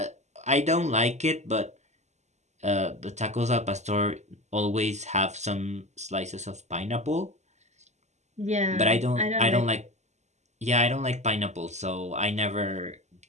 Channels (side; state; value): left; late; 0.33 ms